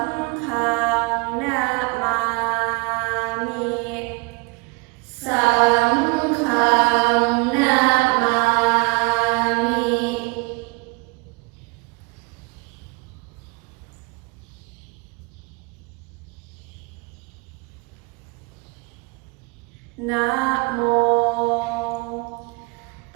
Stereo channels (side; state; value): left; quieter; 28.6 dB